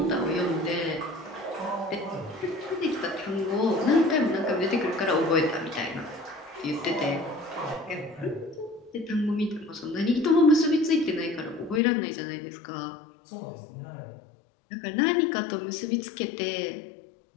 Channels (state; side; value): drops out; right; at 11.8 s